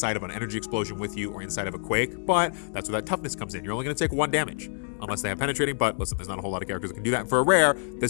of an energy explosion with you or inside of a quake, but that's where that toughness comes in. You're only going to take 1 damage unless they have penetrating, but listen, there's not a whole lot of characters that can do that. And for a rare,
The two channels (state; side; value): silent; right; digital silence